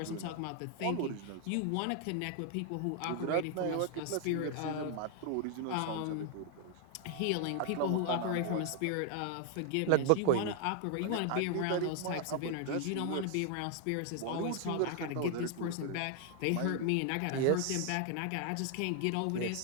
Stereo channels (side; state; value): both; different; correlation 0.00